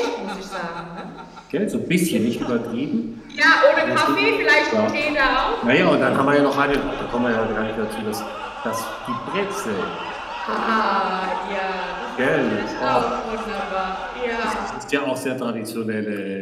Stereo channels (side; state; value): both; identical; correlation 1.00